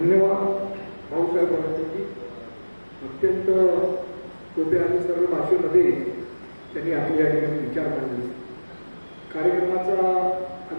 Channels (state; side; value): inverted; both; correlation -1.00